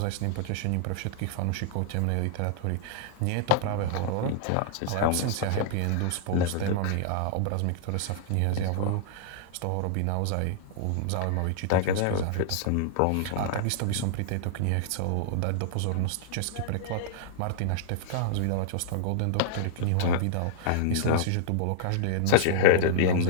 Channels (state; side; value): different; both; correlation -0.01